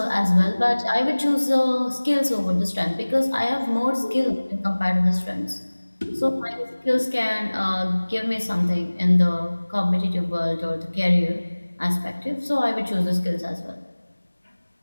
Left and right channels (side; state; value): both; inverted; correlation -1.00